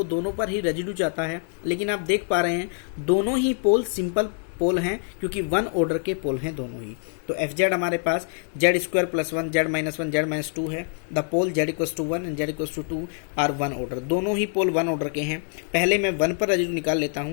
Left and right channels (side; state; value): right; silent; 62 dB below the other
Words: दोनों पर ही रेजिड्यू चाहता है। लेकिन आप देख पा रहे हैं दोनों ही पोल सिंपल पोल हैं, क्योंकि 1 ऑर्डर के पोल हैं दोनों ही। तो FZ हमारे पास Z² + 1 Z - 1 Z - 2 है। The pole Z=1 and Z=2 are 1 order, दोनों ही पोल 1 ऑर्डर के हैं। पहले मैं 1 पर रेजिड्यू निकाल लेता